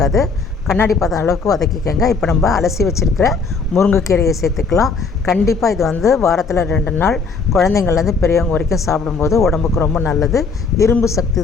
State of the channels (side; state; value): right; quieter; 4.7 dB